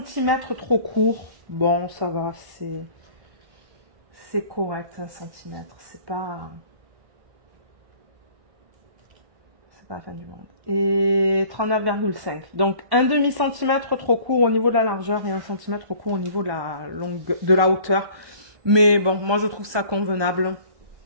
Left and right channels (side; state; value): left; late; 1.2 ms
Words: trop court. Bon, ça va, c'est correct, 1 cm. C'est pas la fin du monde. Et 39,5. Donc, un demi-centimètre trop court au niveau de la largeur et 1 cm trop court au niveau de la hauteur. Mais bon, moi je trouve ça convenable.